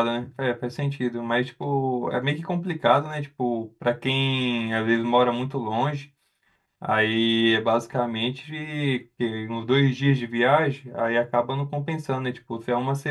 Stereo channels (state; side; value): identical; both; correlation 1.00